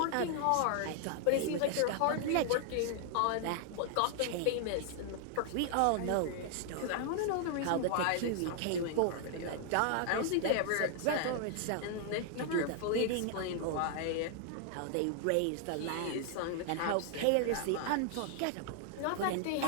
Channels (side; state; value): both; different; correlation 0.00